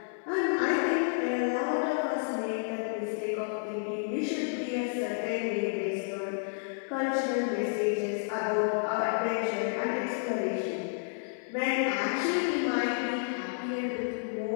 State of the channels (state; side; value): silent; right; 57 dB below the other